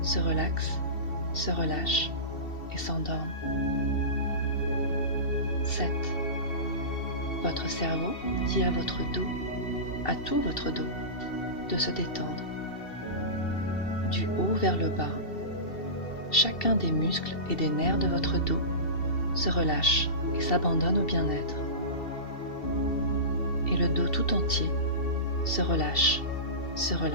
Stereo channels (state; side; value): late; right; 2.7 ms